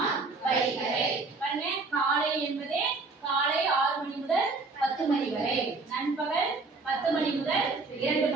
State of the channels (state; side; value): quieter; left; 3.8 dB